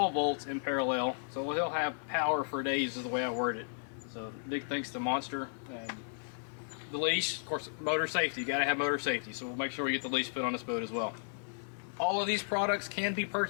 volts in parallel, so he'll have power for days is the way I word it. So big thanks to Monster. The leash, of course, motor safety, you got to have motor safety, so we'll make sure we get the leash put on this boat as well. All of these products can be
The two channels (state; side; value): silent; right; digital silence